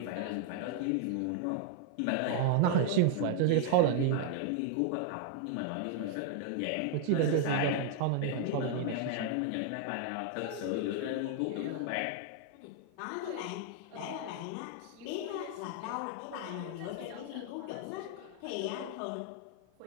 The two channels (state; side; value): different; both; correlation 0.00